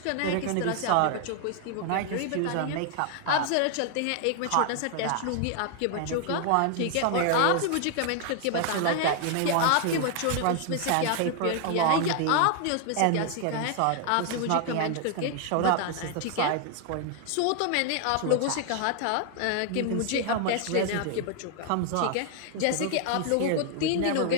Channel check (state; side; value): different; both; correlation 0.00